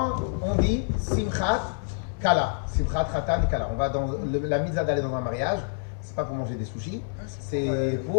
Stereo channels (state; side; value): silent; right; 60 dB below the other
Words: on dit Simchat Kala, Simchat Khatan Kala, on va dans la mitzvah d'aller dans un mariage, c'est pas pour manger des sushis, c'est